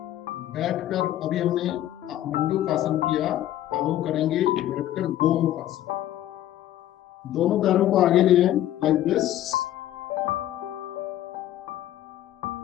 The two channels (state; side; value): quieter; right; 12.9 dB